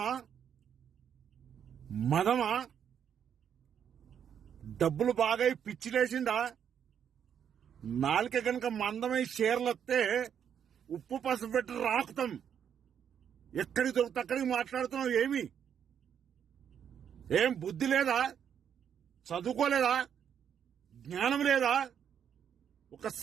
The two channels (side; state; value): left; quieter; 8.4 dB